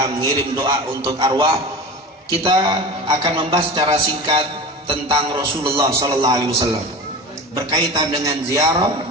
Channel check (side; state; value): both; normal; correlation 0.31